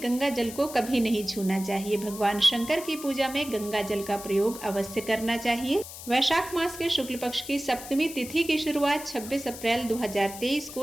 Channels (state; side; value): noise; left; hiss, 12 dB below the sound